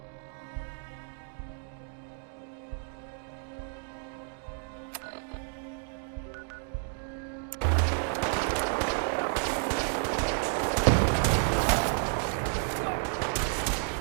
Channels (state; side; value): silent; left; 57 dB below the other